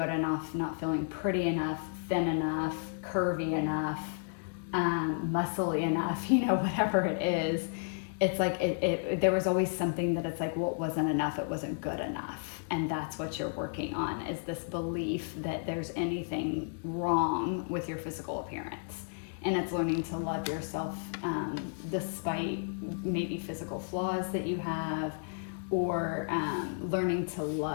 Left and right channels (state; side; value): silent; right; digital silence